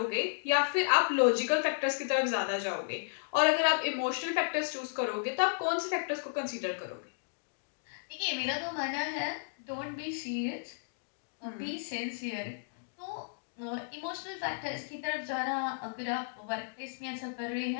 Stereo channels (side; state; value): right; silent; digital silence